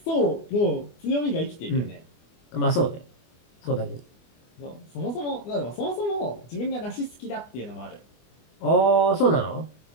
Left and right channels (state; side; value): late; right; 24 ms